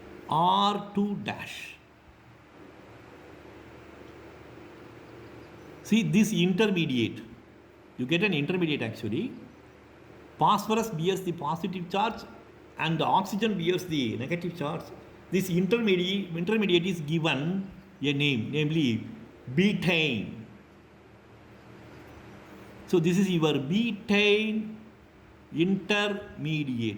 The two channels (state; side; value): identical; both; correlation 1.00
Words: R2 dash. See this intermediate, you get an intermediate actually. Phosphorus bears the positive charge and the oxygen bears the negative charge. This intermediate is given a name, namely betaine. So this is your betaine